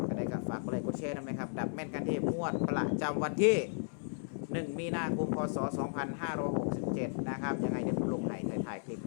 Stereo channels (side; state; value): right; silent; digital silence